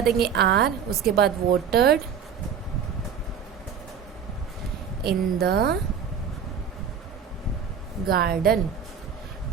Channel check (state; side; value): quieter; left; 7.3 dB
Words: आर। उसके बाद watered in the garden.